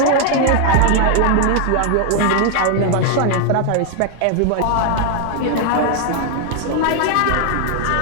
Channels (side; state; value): both; different; correlation 0.00